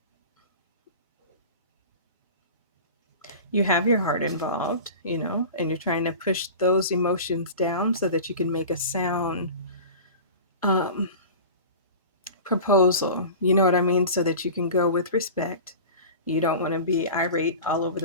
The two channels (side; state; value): both; inverted; correlation -0.35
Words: You have your heart involved, and you're trying to push those emotions down so that you can make a sound proposal. You know what I mean? So that you can go with respect. You don't want to be irate all over